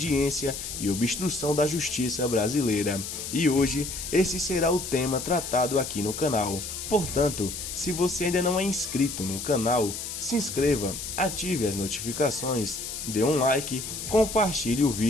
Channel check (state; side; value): noise; left; hiss, 7 dB below the sound